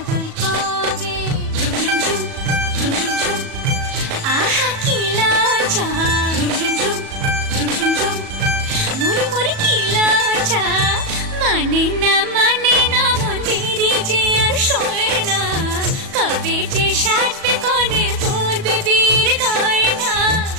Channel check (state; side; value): late; left; 37 ms